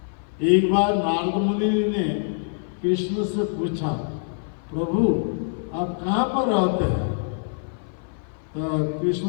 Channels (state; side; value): silent; right; 57 dB below the other